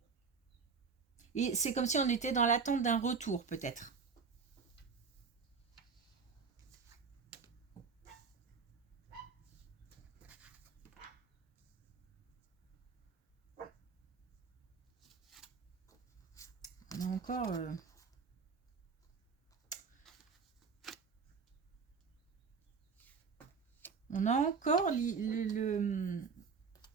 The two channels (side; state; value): left; quieter; 5.3 dB